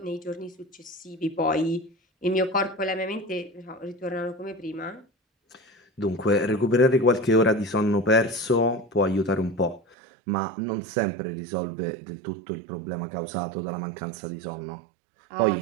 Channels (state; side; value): drops out; left; at 10.0 s